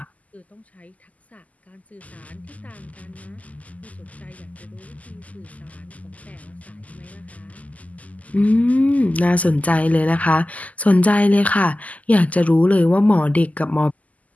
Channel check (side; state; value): right; late; 0.074 ms